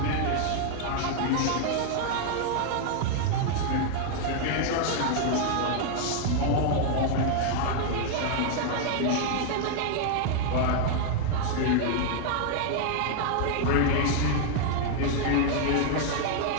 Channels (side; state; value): both; different; correlation 0.00